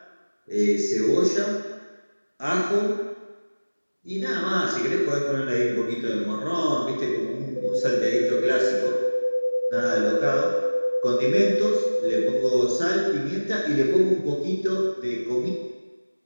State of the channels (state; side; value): inverted; both; correlation -1.00